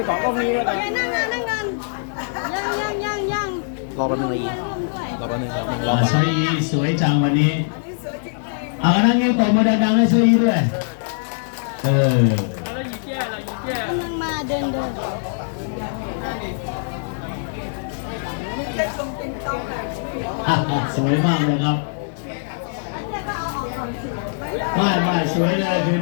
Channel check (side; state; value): right; silent; digital silence